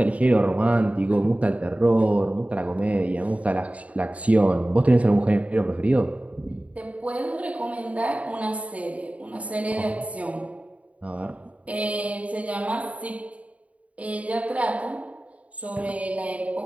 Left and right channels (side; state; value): left; late; 0.067 ms